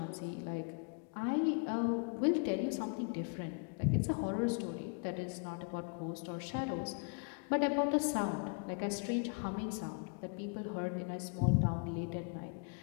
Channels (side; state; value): right; quieter; 37.8 dB